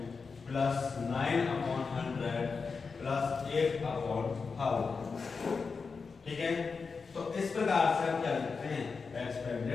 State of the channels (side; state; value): right; quieter; 4.9 dB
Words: plus 9 upon 100 plus 8 upon 1000। ठीक है, तो इस प्रकार से हम क्या लिखते हैं